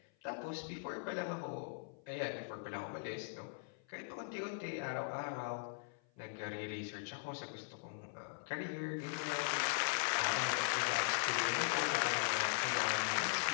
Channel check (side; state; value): right; silent; 51 dB below the other